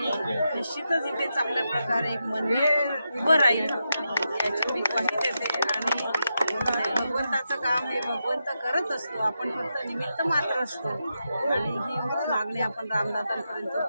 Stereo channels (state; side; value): inverted; both; correlation -0.86